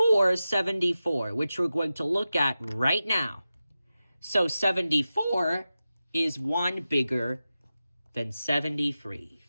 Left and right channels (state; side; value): inverted; both; correlation -0.93